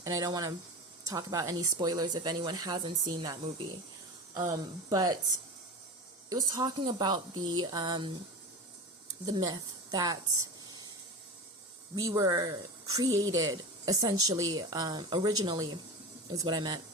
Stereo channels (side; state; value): both; normal; correlation 0.28